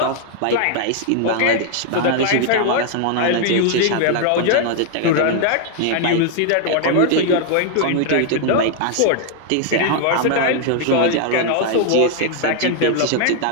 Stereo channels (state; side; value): different; both; correlation 0.00